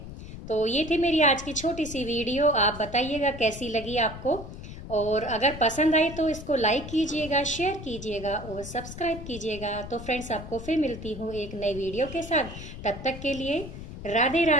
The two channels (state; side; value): noise; left; rumble, 11 dB below the sound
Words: तो ये थी मेरी आज की छोटी सी वीडियो। आप बताइएगा कैसी लगी आपको, और अगर पसंद आई तो इसको लाइक कीजिएगा, शेयर कीजिएगा और सब्सक्राइब कीजिएगा। तो फ्रेंड्स, आपको फिर मिलती हूँ एक नई वीडियो के साथ। तब तक के लिए राधे